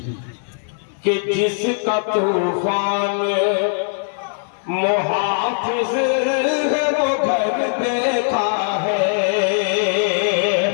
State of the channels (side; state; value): right; silent; digital silence